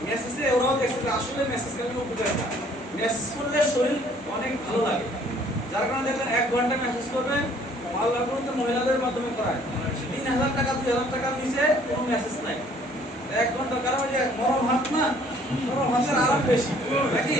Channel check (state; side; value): normal; both; correlation 0.59